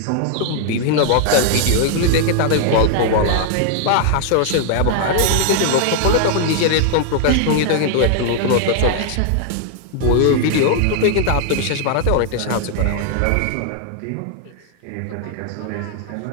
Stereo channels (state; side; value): different; both; correlation 0.00